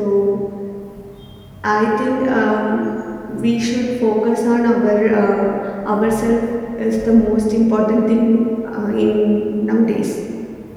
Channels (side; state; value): both; identical; correlation 1.00